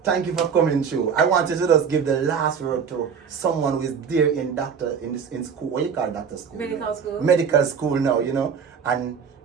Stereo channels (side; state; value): left; quieter; 6.8 dB